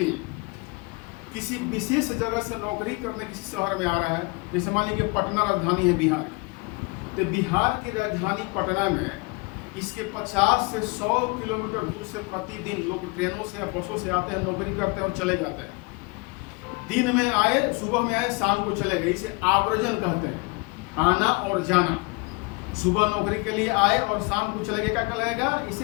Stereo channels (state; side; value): quieter; right; 28.4 dB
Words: किसी विशेष जगह से नौकरी करने किसी शहर में आ रहा है। जैसे मान लीजिए पटना राजधानी है बिहार की, तो बिहार की राजधानी पटना में इसके 50 से 100 किलोमीटर दूर से प्रतिदिन लोग ट्रेनों से या बसों से आते हैं, नौकरी करते हैं और चले जाते हैं। दिन में आए, सुबह में आए, शाम को चले गए। इसे आवर्जन कहते हैं, आना और जाना। सुबह नौकरी के लिए आए और शाम को चले गए, क्या कहलाएगा?